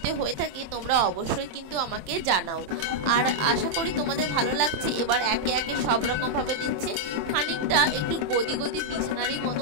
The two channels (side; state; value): left; late; 27 ms